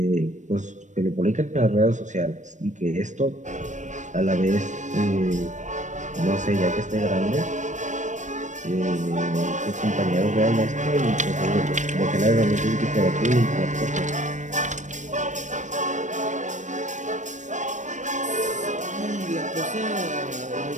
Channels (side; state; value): left; late; 0.35 ms